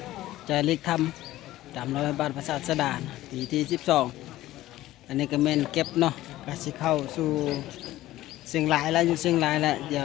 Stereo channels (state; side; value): quieter; right; 15.5 dB